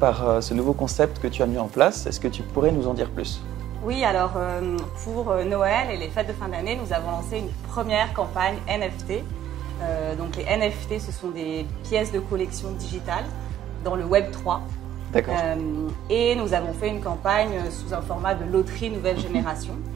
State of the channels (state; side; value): quieter; left; 11.4 dB